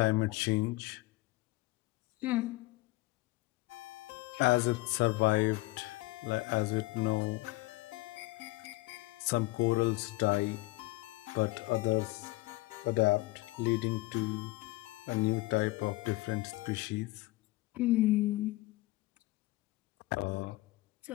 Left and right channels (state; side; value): quieter; right; 20.5 dB